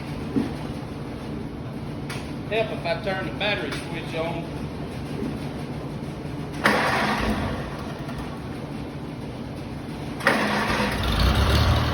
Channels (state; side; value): identical; both; correlation 1.00